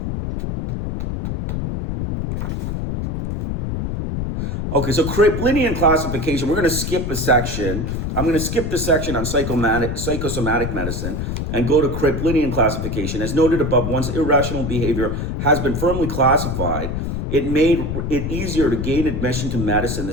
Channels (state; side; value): noise; left; rumble, 3 dB below the sound